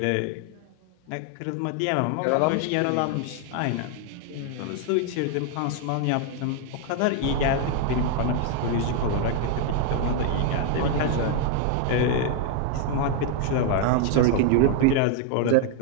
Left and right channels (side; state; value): both; different; correlation 0.00